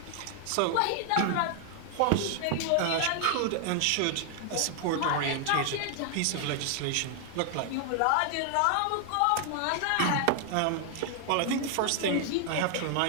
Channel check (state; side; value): different; both; correlation 0.00